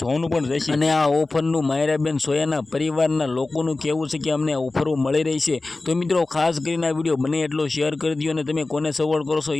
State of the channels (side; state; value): right; quieter; 3.3 dB